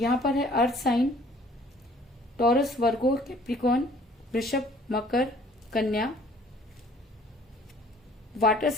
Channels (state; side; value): normal; both; correlation 0.56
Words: पर है earth sign, Taurus, Virgo, Capricorn, Vrishabh, Makar, Kanya. Water